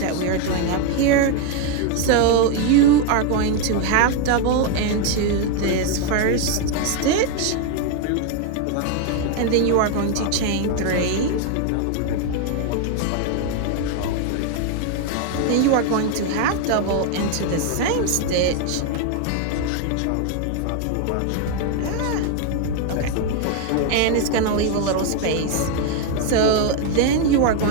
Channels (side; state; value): both; different; correlation 0.01